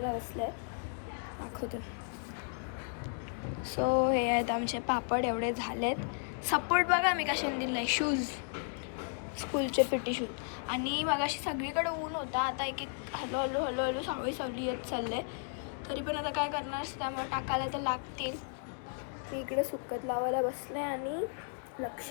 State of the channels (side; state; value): right; silent; 55 dB below the other